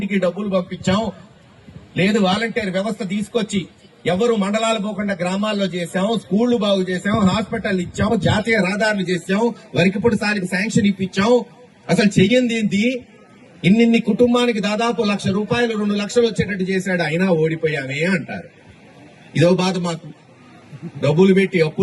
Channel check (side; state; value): both; identical; correlation 1.00